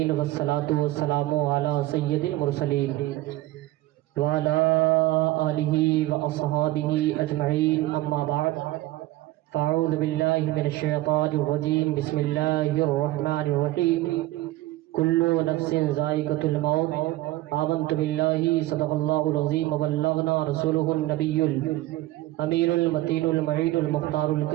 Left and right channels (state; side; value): quieter; left; 17.1 dB